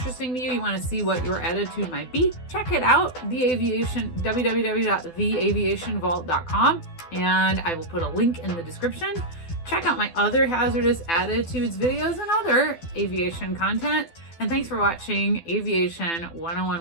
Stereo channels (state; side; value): late; right; 12 ms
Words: to you, you want to see what your attitude might be, check it out, www.theaviationvault.com, and I will put a link in the description. Check out my other hazardous attitudes videos and other aviation content. And thanks for watching Aviation